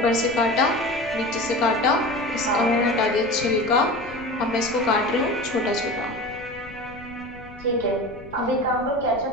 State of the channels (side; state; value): left; noise; rumble, 19 dB below the sound